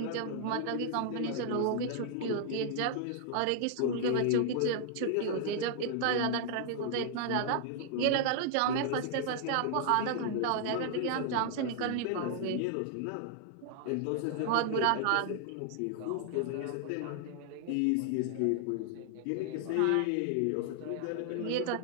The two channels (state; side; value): different; both; correlation 0.00